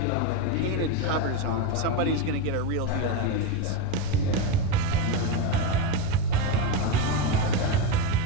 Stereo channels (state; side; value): different; both; correlation 0.06